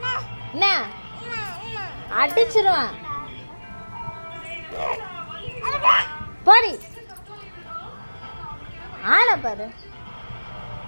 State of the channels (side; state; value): both; inverted; correlation -1.00